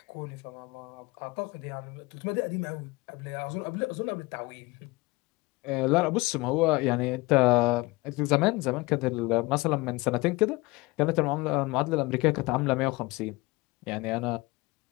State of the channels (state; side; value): quieter; right; 22.7 dB